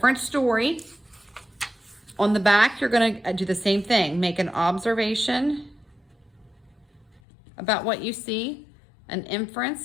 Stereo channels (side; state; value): right; drops out; at 7.2 s